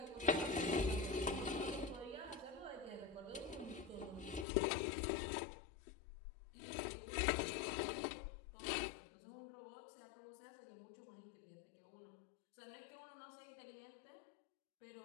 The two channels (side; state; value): right; drops out; at 4.5 s